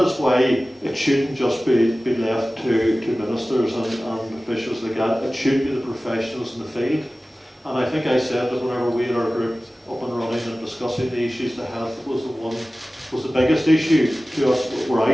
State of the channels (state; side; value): normal; both; correlation 0.97